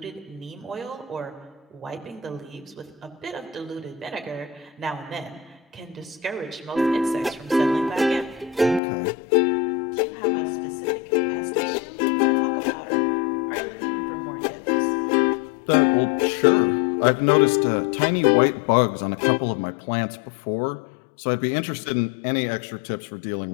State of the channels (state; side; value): drops out; right; at 8.8 s